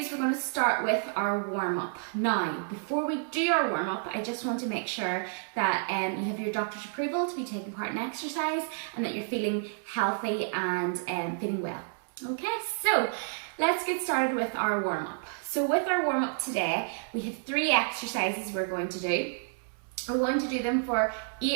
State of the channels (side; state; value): left; silent; digital silence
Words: we're going to start with our warm-up. Now, before we do our warm-up, I just want to make sure that you have your doctor's approval to be taking part in exercise and that you're feeling healthy and feeling well. Okay, so let's get started with our warm-up. So with our warm-up today, we have 3 exercises we're going to do. We're going to do them for